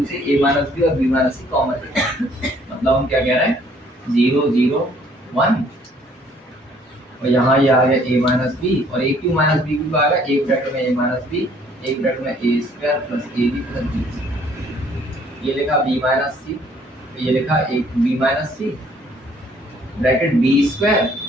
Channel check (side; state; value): both; normal; correlation 0.61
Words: से a माइनस बी और b माइनस सी कॉमन है। मतलब हम क्या कह रहे हैं, 0 0 1 और यहाँ ये आ गया a माइनस बी और a cube minus B cube आ गया एक ब्रैकेट में a माइनस बी, एक ब्रैकेट में a square plus ab plus b square. ये लिखा b माइनस सी, ये लिखा एक b minus C bracket b square